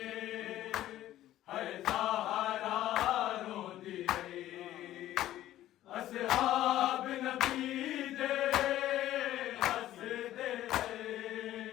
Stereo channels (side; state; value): right; quieter; 13.7 dB